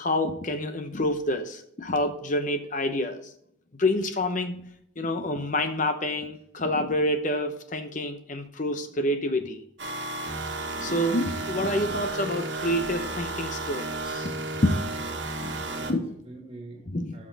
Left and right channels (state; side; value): normal; both; correlation 0.18